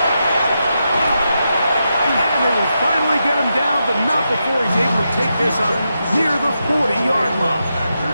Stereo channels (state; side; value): inverted; both; correlation -0.86